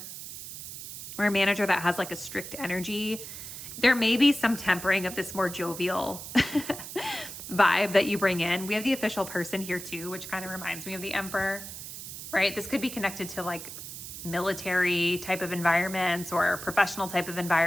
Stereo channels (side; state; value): right; noise; hiss, 10 dB below the sound